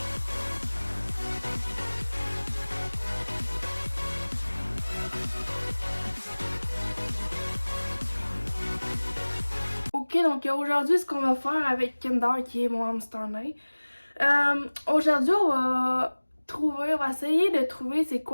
Ok, donc aujourd'hui ce qu'on va faire avec Kinder qui est mon hamster nain. Aujourd'hui on va essayer de trouver c'est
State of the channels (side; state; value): both; inverted; correlation -1.00